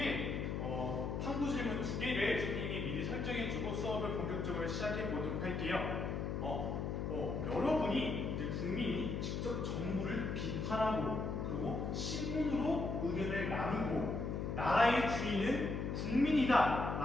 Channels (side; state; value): left; noise; hum, 2 dB below the sound